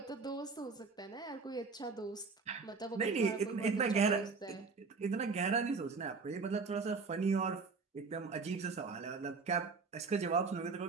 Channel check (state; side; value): quieter; left; 4.6 dB